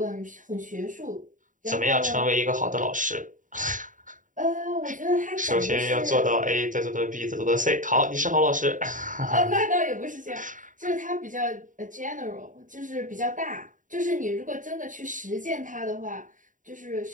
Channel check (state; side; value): late; left; 0.38 ms